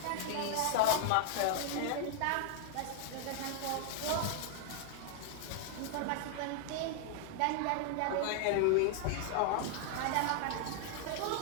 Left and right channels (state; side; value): different; both; correlation 0.00